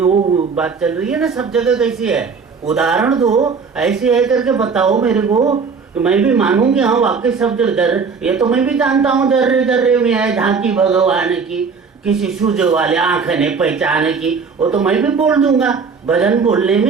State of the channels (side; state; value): left; quieter; 5.3 dB